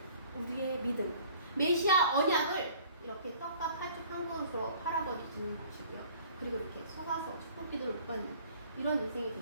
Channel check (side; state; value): both; inverted; correlation -0.52